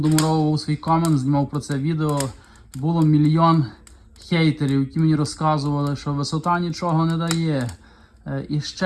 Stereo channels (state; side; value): identical; both; correlation 1.00